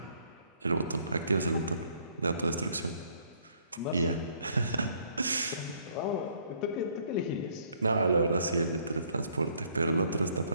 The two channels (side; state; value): both; inverted; correlation -0.64